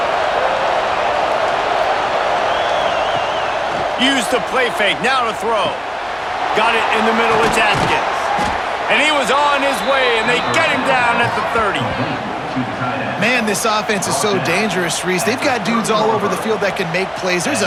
Use the play fake, now to throw. Got it in the middle, it's Atkins. And he was on his way, and they get him down at the 30. Man, this offense is so dangerous, Reese. They've got dudes all over the field that can make plays. There's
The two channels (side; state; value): both; identical; correlation 1.00